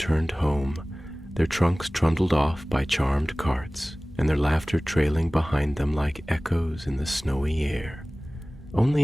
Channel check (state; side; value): normal; both; correlation 0.98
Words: home, their trunks trundled off by charmed carts, and their laughter trailing behind them like echoes in the snowy air.